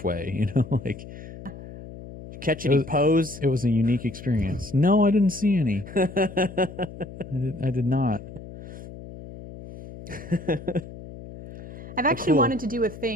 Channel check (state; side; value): noise; left; hum, 14 dB below the sound